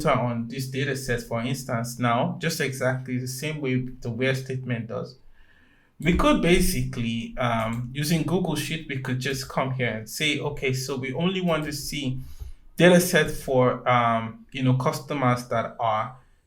on this data set, for instance, now just exactly the same way the where statement does, we could basically using Google Sheet, we could just come here and say, okay, so we only want to see data set for customers that are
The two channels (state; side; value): identical; both; correlation 1.00